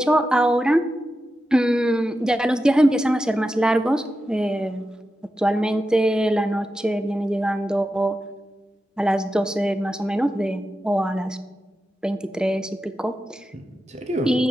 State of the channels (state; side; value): normal; both; correlation 0.90